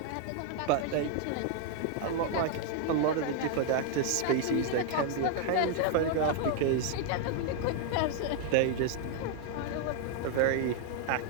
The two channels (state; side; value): different; both; correlation 0.00